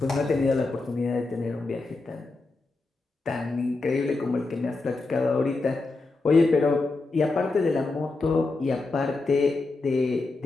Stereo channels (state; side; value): quieter; right; 3.5 dB